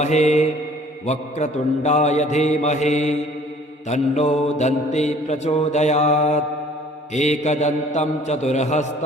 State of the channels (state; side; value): normal; both; correlation 0.54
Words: वक्रतुण्डाय धीमहि तन्नो दन्ती प्रचोदयात् एकदन्तं